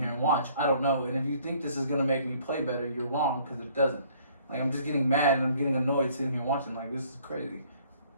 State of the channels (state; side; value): inverted; both; correlation -0.59